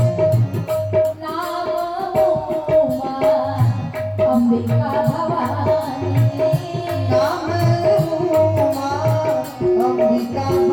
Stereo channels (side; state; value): both; identical; correlation 1.00